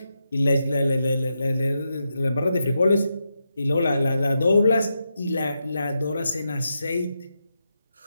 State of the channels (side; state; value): both; inverted; correlation -0.86